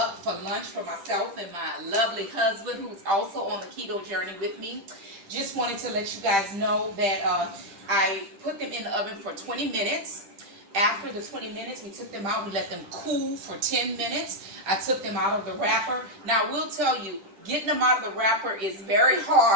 for lunch for myself and my lovely husband, who's also on the keto journey with me. Just wanted to let you guys know that I put them in the oven for 20 minutes. After the 20 minutes, we took them out. We let them cool for 10 minutes. I took them out of the wrapper. Now, I will tell you, getting them out of the wrapper is very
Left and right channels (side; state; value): left; late; 10 ms